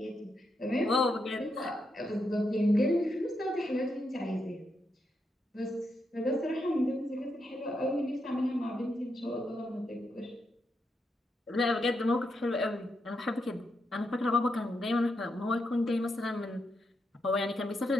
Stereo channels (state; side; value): normal; both; correlation 0.83